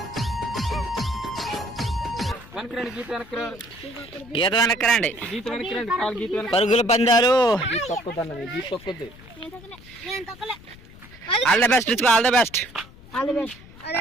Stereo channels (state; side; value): noise; left; rumble, 20 dB below the sound